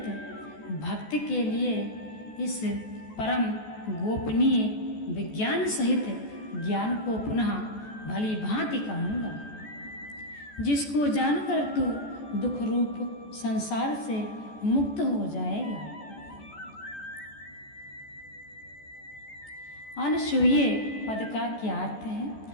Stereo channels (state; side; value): late; right; 14 ms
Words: भक्त के लिए इस परम गोपनीय विज्ञान सहित ज्ञान को पुनः भली भांति कहूँगा, जिसको जानकर तू दुख रूप संसार से मुक्त हो जाएगा। अनसूये पद का क्या अर्थ